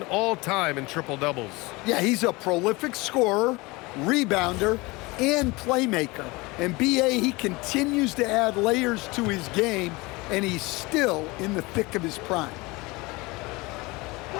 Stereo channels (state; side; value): quieter; right; 23.7 dB